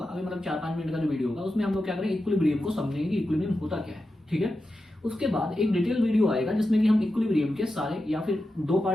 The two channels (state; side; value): normal; both; correlation 0.90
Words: अभी मतलब 4-5 मिनट का जो वीडियो होगा, उसमें हम लोग क्या करें, इक्विलिब्रियम को समझेंगे कि इक्विलिब्रियम होता क्या है, ठीक है। उसके बाद एक डिटेल वीडियो आएगा जिसमें कि हम इक्विलिब्रियम के सारे या फिर 2